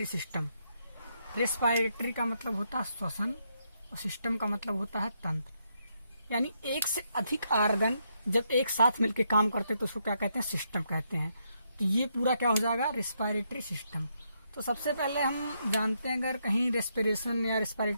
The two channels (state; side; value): inverted; both; correlation -0.78